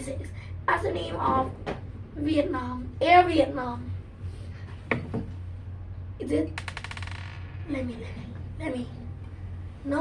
as the name of Vietnam, Air Vietnam. Is it? Let me.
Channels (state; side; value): identical; both; correlation 1.00